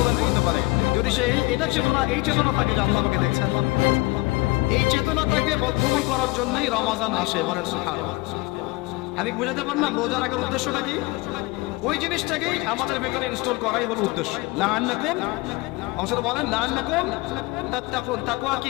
করতে পারে? যদি সে এটা চেতনা, এই চেতনা থাকে যে আল্লাহ আমাকে দেখছেন, এই চেতনাটাকে বদ্ধমূল করার জন্যই রমাদান আসে। বলেন সুবহানাল্লাহ। আমি বুঝাতে পারলাম রোজা রাখার উদ্দেশ্যটা কি? ওই জিনিসটাকেই আমাদের ভেতরে ইনস্টল করাই হলো উদ্দেশ্য। লাআন্নাকুম, অংশটা বলেন লাআন্নাকুম তাত্তাকুন। তাকওয়া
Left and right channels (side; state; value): right; quieter; 23.1 dB